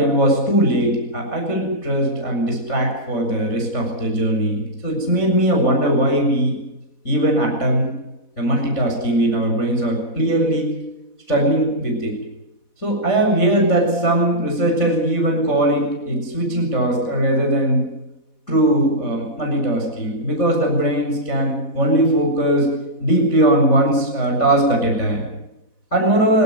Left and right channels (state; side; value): late; right; 4.1 ms